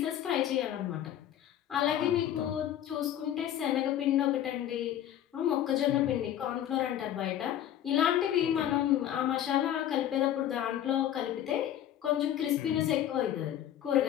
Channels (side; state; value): right; quieter; 11.3 dB